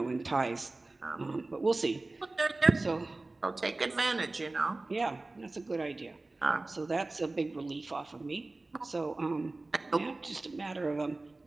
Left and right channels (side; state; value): left; quieter; 3.1 dB